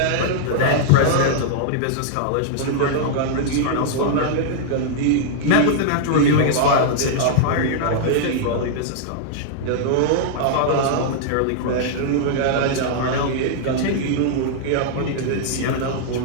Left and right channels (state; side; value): different; both; correlation -0.01